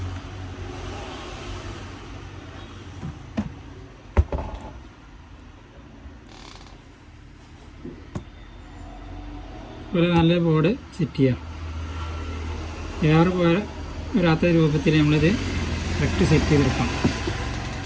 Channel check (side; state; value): both; identical; correlation 1.00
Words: ഒരു നല്ല ബോർഡ് സെറ്റ് ചെയ്യാം. എയർ വരാത്ത രൂപത്തിൽ നമ്മളിത് കറക്റ്റ് സെറ്റ് ചെയ്തെടുക്കാം.